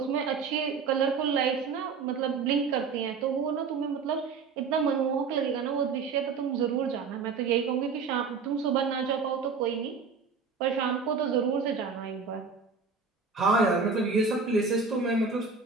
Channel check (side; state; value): left; quieter; 5.1 dB